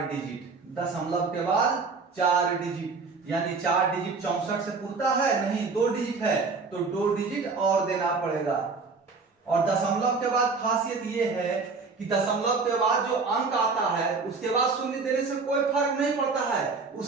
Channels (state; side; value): quieter; left; 4.4 dB